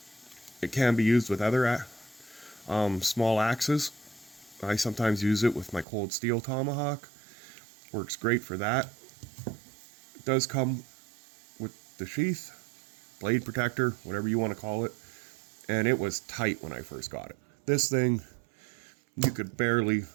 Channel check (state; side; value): drops out; left; at 5.9 s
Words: It can be used with other small axes. I sometimes use it with my cold steel tomahawk. Works great for that. It does come with the sheath, blade protector, whatever you want to call it. And it was tight when I first got it. This thing, you could barely